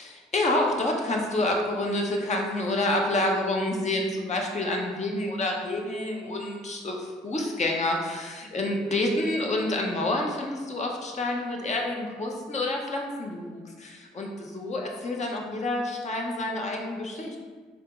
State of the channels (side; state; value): both; normal; correlation 0.50